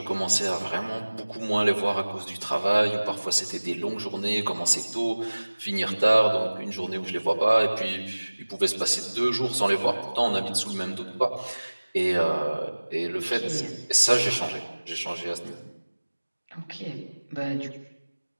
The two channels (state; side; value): inverted; both; correlation -1.00